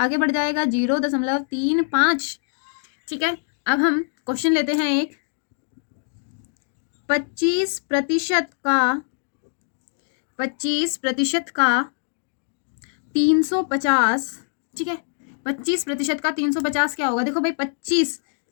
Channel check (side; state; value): right; silent; 57 dB below the other